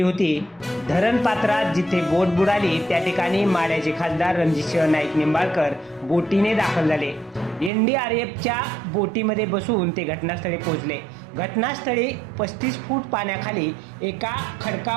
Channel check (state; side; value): drops out; left; at 7.7 s